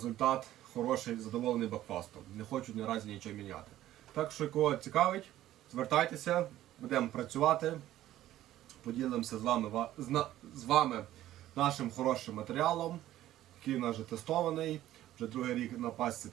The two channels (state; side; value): quieter; left; 13.7 dB